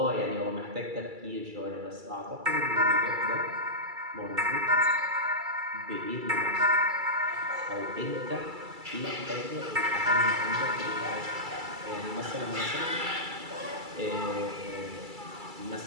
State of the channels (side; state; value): left; late; 2.3 ms